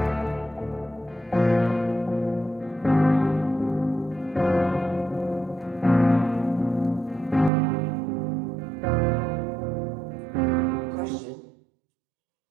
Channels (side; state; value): left; drops out; at 7.5 s